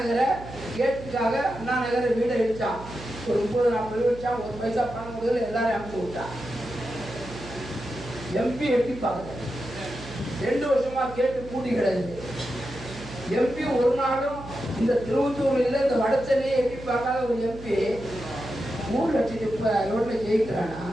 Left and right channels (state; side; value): noise; right; hum, 14 dB below the sound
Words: கேட்டுக்காக அண்ணா நகரை வீடை இடிச்சான். ஒரு 30-40 வச்சான். 1 பைசா பணம் கொடுக்கல, எல்லாரும் அனுப்பிச்சு விட்டான். எம்பி எட்டி பார்க்கல. 2 வருஷமா கேட்டு கூட்டி கிடையாது. எம்பி ஒரு நாளும் இந்த திருவத்தூர்ல இல்லை, இந்த வடச்சென்னையை எட்டி பார்க்காத ஒரு எம்பி 3 லட்சம் ரோட்ல ஜெயிக்கிறானா?